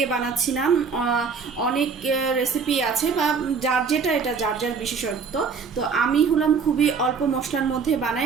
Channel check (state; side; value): quieter; left; 5.5 dB